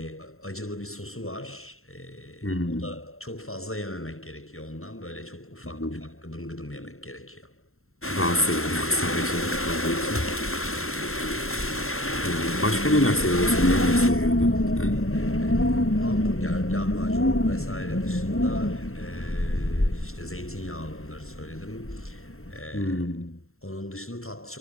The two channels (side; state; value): right; late; 0.62 ms